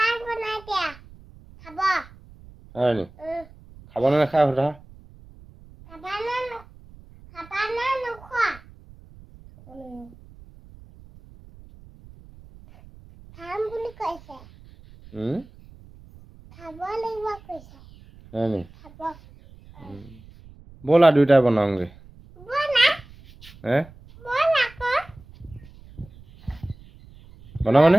বনাই দিয়া খাব হয় নি খাব নে নাখায় সোধা খাবা না নোখোৱা খাম বুলি কৈছে খাব লাগিব কৈছে হয় নি খাব ব'লা দুইটাই বনাওঁগে বনা বনা আকৌ বনাবানে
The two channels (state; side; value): noise; right; rumble, 22 dB below the sound